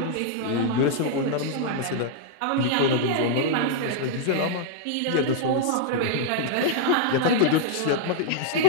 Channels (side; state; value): both; different; correlation -0.01